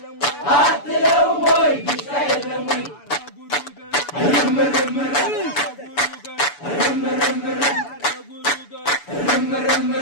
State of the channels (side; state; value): right; late; 6.9 ms